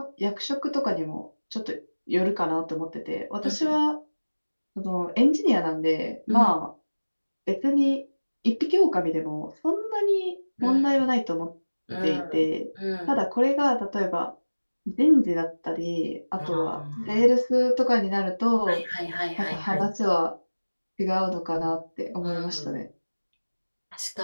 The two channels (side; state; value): both; inverted; correlation -1.00